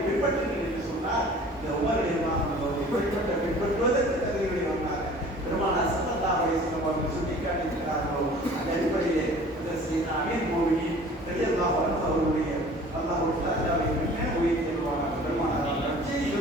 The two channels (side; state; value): both; normal; correlation 0.47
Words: பின்பற்றுங்கள் என்று சொன்னார். இந்த உமர் பின்பற்றுவதற்கு தகுதிகளை வந்தாங்க. பெருமானார் ஸல்லல்லாஹு அலைஹி வஸல்லம் அவர்கள் சுட்டிக்காட்டியிருக்கிறார்களோ அந்த அடிப்படையிலே அமீர் மோமினின் ரலியல்லாஹு அன்ஹு அவருடைய அல்லாஹ்வுடைய தஆலாவை என்ன உயர்த்தி வருவாங்க. பெருமானாரால் நற்செய்தி